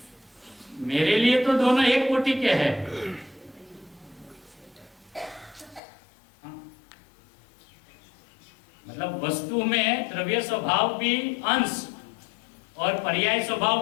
मेरे लिए तो दोनों एक कोटि के हैं। मतलब वस्तु में द्रव्य स्वभाव भी अंश और पर्याय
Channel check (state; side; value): drops out; right; at 5.8 s